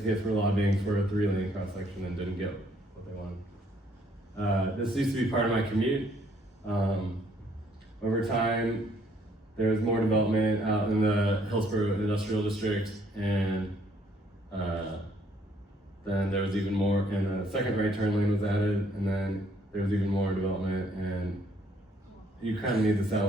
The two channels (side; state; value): both; normal; correlation 0.66